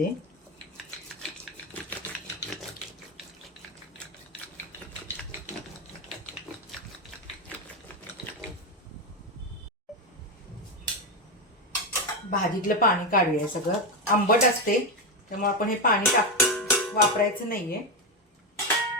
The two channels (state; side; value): normal; both; correlation 0.10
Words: भाजीतलं पाणी काढूया. सगळं आंबट असते त्यामुळे आपण हे पाणी वापरायचं नाहीये.